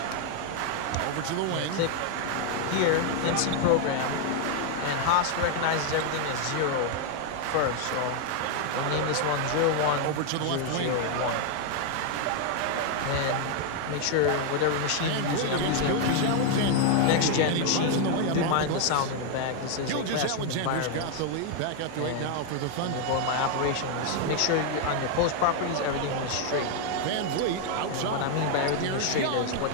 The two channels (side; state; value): both; different; correlation 0.00